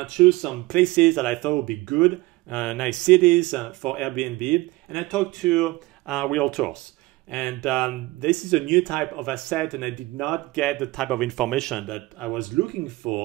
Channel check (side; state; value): left; quieter; 20.4 dB